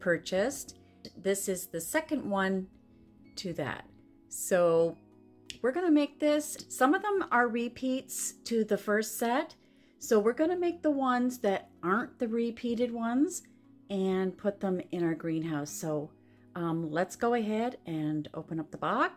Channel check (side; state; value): both; identical; correlation 1.00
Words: This is the second one to that. So we're gonna make this. Some of them are repeats to the first set. So we're gonna make the ones that aren't the repeated ones and put them in our greenhouse. So let's go ahead and open up the